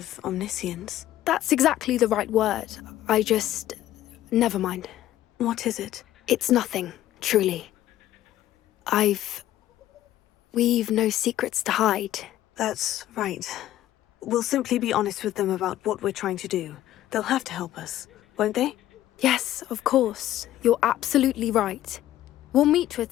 omniscience. That's exactly the right word. Never mind. What is it? It's nothing, truly. We've no secrets to hide. That's right. We'll simply be honest with them about what we're trying to do. They'll have to help us, won't they? Yes, of course. You're absolutely right. We'll meet with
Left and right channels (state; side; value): quieter; right; 13.4 dB